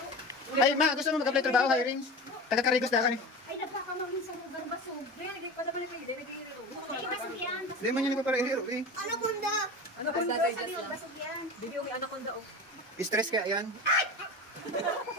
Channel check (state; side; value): normal; both; correlation 0.31